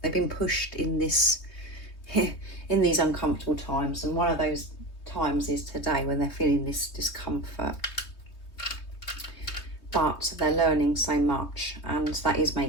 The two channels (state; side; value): late; right; 3.2 ms